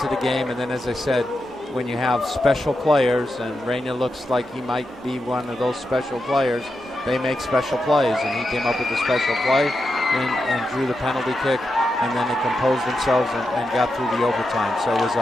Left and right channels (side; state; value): both; normal; correlation 0.87